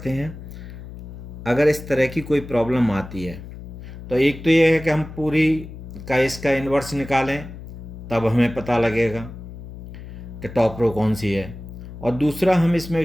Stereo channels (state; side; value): noise; left; hum, 13 dB below the sound